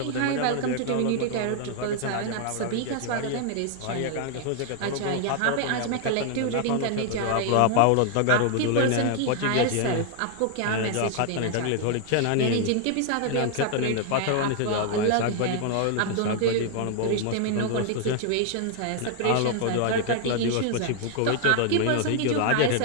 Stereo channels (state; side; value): different; both; correlation 0.00